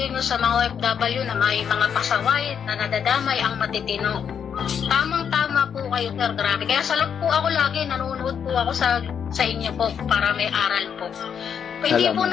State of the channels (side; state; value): right; quieter; 7.7 dB